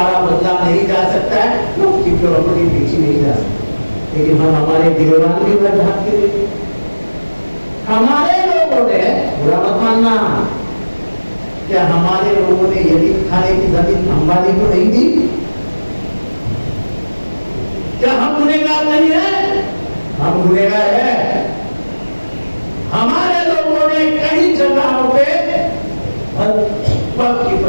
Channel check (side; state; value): both; inverted; correlation -1.00